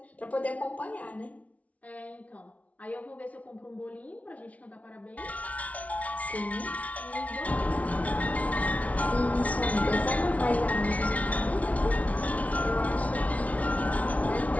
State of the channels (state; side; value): late; right; 0.067 ms